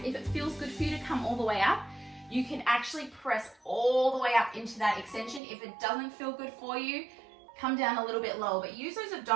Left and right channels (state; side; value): drops out; left; at 5.4 s